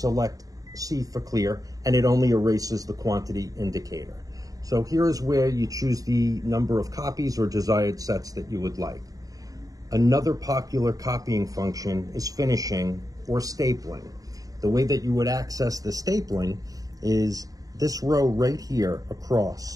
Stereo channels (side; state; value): left; late; 0.17 ms